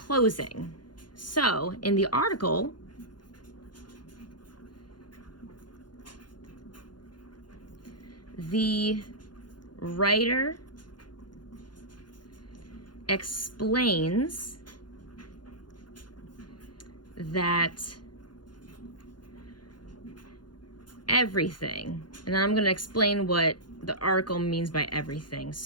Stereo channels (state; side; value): late; right; 0.71 ms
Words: So in the article, the writer explains that everything, and I'm going to explain what the article means by everything.